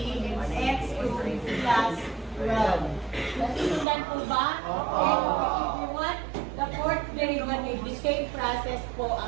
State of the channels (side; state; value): left; drops out; at 3.9 s